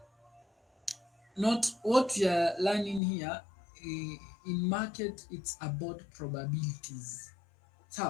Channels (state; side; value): drops out; right; at 3.0 s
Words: not what we are learning here in market. It's about probabilities.